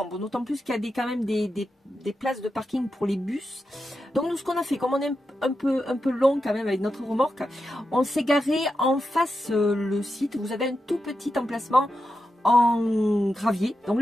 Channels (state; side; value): normal; both; correlation 0.88